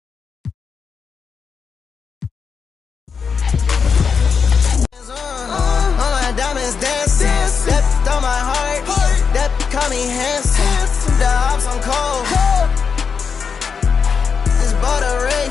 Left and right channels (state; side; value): quieter; right; 5.9 dB